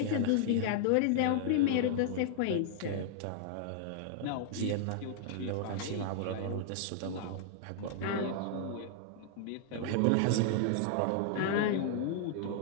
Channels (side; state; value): both; different; correlation 0.00